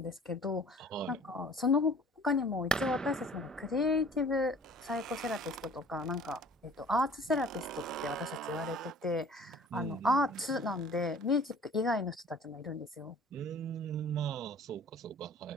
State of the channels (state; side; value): normal; both; correlation 0.49